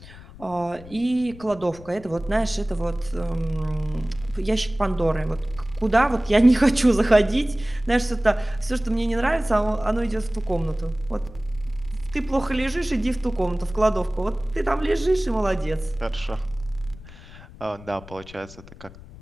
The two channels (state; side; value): noise; left; rumble, 18 dB below the sound